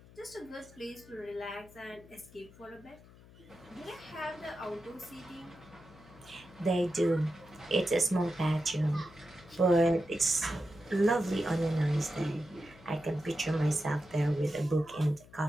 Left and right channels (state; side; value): noise; left; hum, 22 dB below the sound